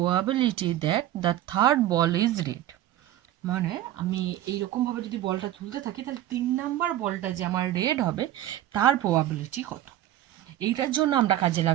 that the third ball is red, মানে আমি এইরকমভাবে যদি বলটা তুলতে থাকি তাহলে 3 নাম্বার বলটা যে আমার রেড হবে তার প্রবাবিলিটি কত। এইটার জন্য আমরা কাজে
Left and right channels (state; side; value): quieter; left; 13.1 dB